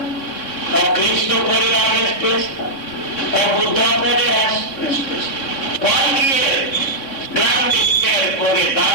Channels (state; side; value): late; right; 3.6 ms